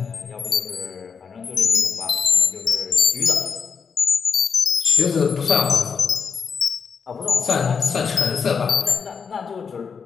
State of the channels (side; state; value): right; quieter; 6.1 dB